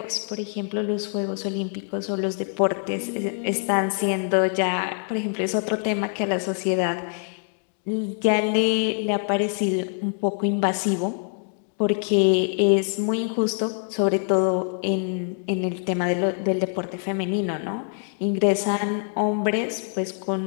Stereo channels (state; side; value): silent; right; 62 dB below the other